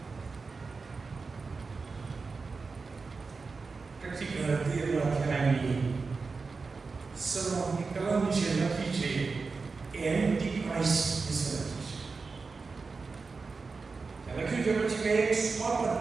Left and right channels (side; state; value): left; quieter; 4.4 dB